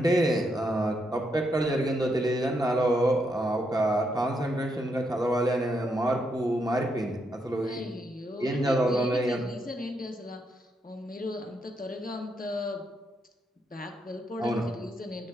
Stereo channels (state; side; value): normal; both; correlation 0.79